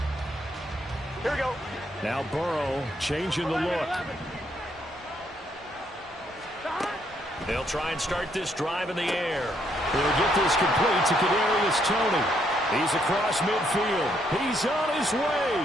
Here we go. Now Burrow changing the look. They'll try and start this drive in the air. He'll get this complete to Kadarius Toney. He's across midfield. He's on his way.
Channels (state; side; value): normal; both; correlation 0.73